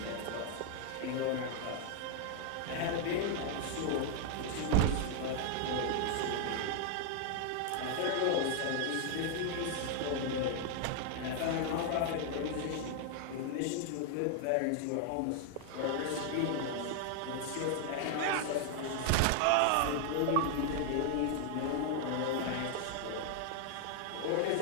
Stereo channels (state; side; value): different; both; correlation 0.00